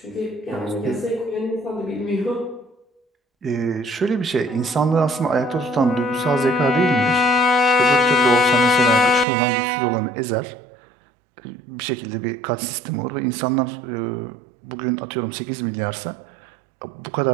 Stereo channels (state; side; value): drops out; left; at 9.2 s